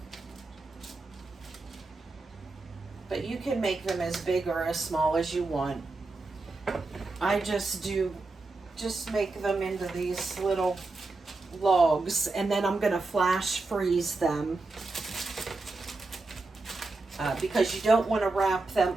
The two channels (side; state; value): left; quieter; 3.5 dB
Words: But you can make them as big or as small as you want. I just make them into these little logs, and then I'm gonna flash freeze them because you don't want to wrap them